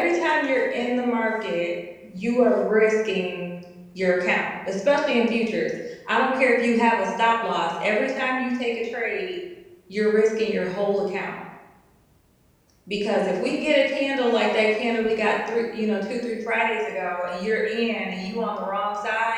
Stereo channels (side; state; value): both; identical; correlation 1.00